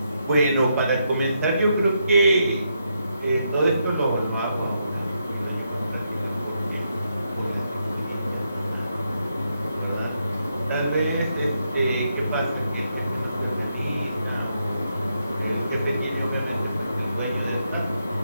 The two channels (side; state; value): both; inverted; correlation -0.80